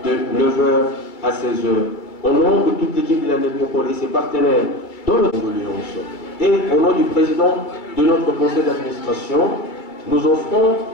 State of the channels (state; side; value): late; right; 2.2 ms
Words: de 9h à 16h. Au nom de toute l'équipe de la Nécropole et ses partenaires dans le condoléance, et au nom du président de notre conseil d'administration, nous offrons